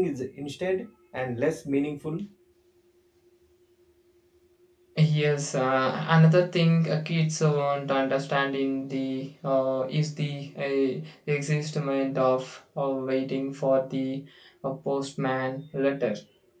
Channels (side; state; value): both; identical; correlation 1.00